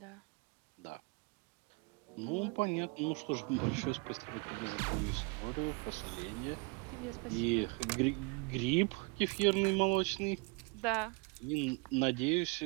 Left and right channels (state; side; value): quieter; left; 29.2 dB